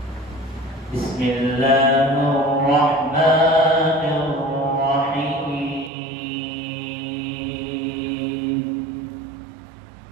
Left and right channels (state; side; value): drops out; left; at 5.9 s